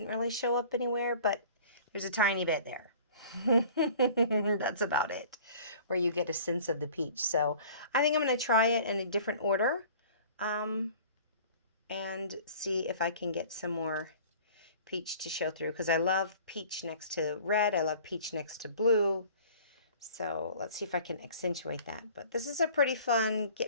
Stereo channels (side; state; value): both; inverted; correlation -0.47